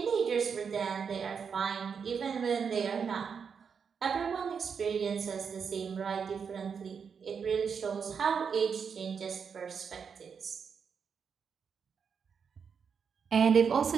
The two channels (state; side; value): quieter; left; 6.4 dB